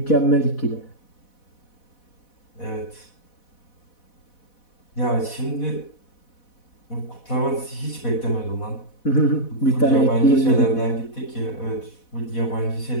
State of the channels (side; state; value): right; late; 4.1 ms